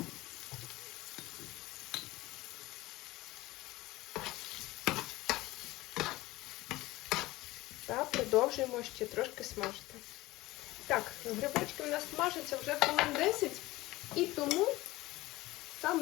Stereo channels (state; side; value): quieter; right; 18.9 dB